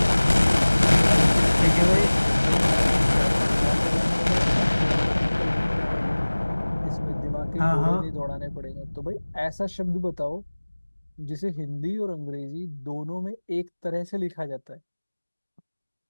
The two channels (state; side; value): inverted; both; correlation -1.00